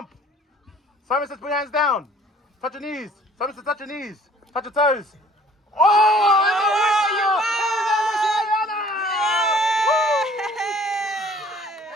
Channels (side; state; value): both; normal; correlation 0.54